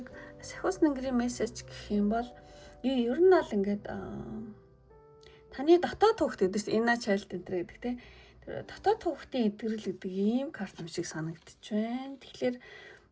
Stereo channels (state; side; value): identical; both; correlation 1.00